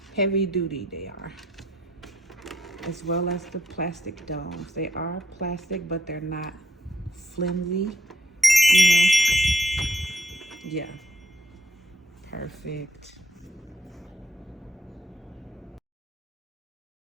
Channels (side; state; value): both; normal; correlation 0.75